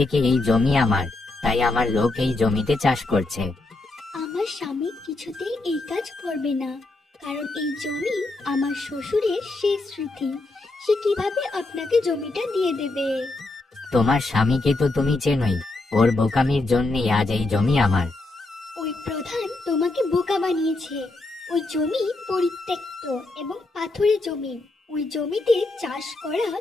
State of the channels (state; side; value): quieter; right; 3.1 dB